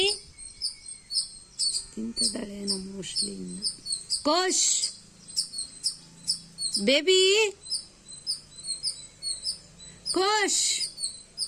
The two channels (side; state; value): both; identical; correlation 1.00